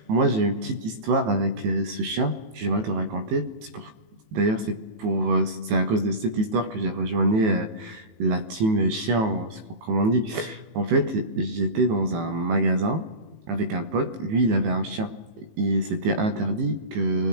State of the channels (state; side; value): late; left; 18 ms